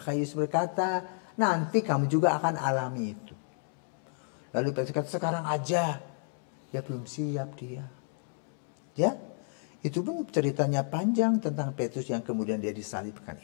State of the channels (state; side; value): silent; right; 57 dB below the other